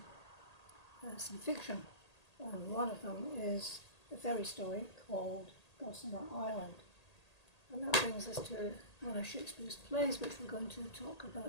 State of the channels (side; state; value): right; late; 1.8 ms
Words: some fiction. One of them is a fairy story called Gossamer Island. And that brings us to one of Shakespeare's plays, which we're going to talk